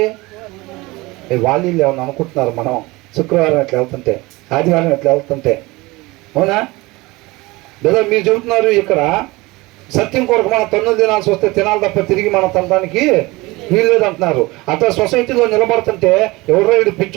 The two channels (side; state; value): left; quieter; 22.1 dB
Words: వాళ్ళు ఏమన్నా అనుకుంటున్నారు మనం శుక్రవారం ఎట్లా వెళ్తుంటే, ఆదివారం ఎట్లా వెళ్తుంటే, అవునా? లేదా మీరు చెబుతున్నారు ఇక్కడ సత్యం కొరకు మనం తన్నులు తినాల్సి వస్తే తినాలి తప్ప తిరిగి మనం తినడానికి వీల్లేదు అంటున్నారు. అట్లా సొసైటీలో నిలబడుతుంటే ఎవరో వీడు